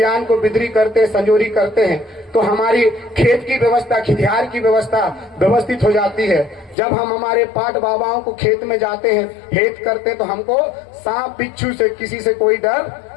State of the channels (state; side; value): drops out; right; at 6.8 s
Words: को बिदरी करते हैं, संजोरी करते हैं, तो हमारी खेत की व्यवस्था, खितिहार की व्यवस्था व्यवस्थित हो जाती है। जब हम हमारे पाट बाबाओं को खेत में जाते हैं, हेत करते हैं, तो हमको सांप बिच्छू से, किसी से कोई डर